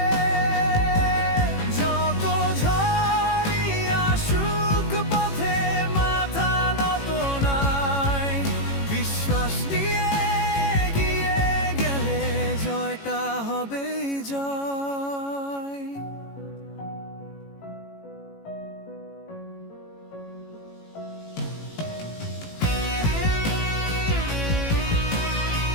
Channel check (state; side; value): late; right; 18 ms